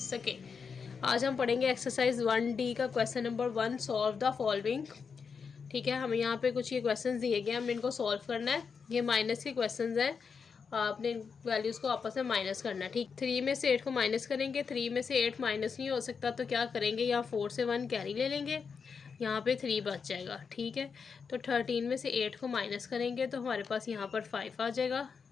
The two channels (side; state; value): right; quieter; 5.8 dB